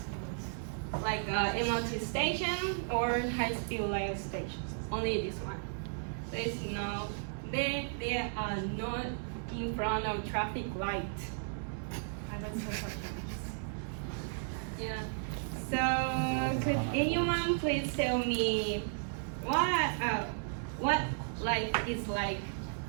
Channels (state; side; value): silent; left; digital silence